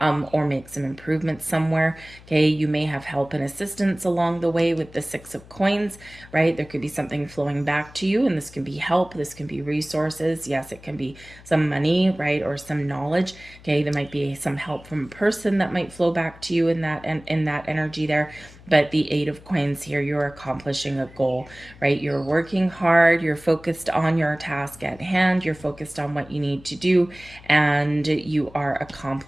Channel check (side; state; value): left; noise; hum, 21 dB below the sound